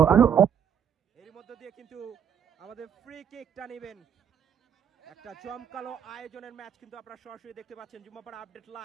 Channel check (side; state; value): left; quieter; 8.3 dB